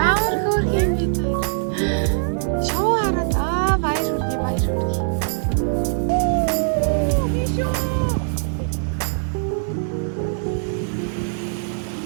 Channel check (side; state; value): left; silent; digital silence